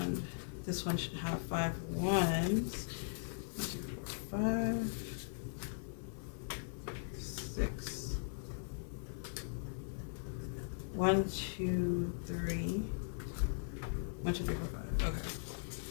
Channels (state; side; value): silent; right; 51 dB below the other